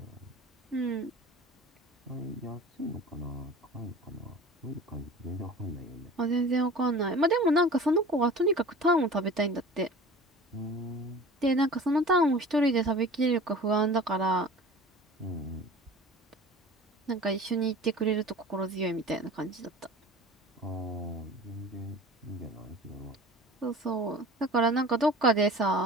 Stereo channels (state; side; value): normal; both; correlation 0.40